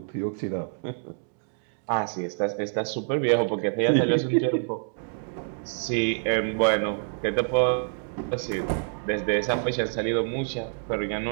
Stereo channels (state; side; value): silent; left; digital silence